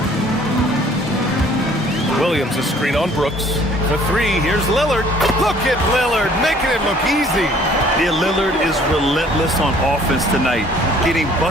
Williams, a screen on Brooks. For 3, here's Lillard. Look at Lillard, making it look easy. Yeah, Lillard is relentless on offense tonight, getting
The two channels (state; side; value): normal; both; correlation 0.56